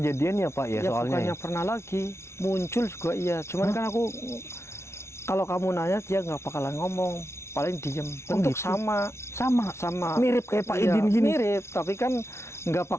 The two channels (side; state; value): right; late; 0.13 ms